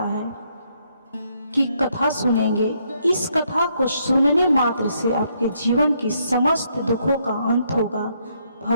है, की कथा सुनेंगे। इस कथा को सुनने मात्र से आपके जीवन की समस्त दुखों का अंत होगा।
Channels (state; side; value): inverted; both; correlation -0.73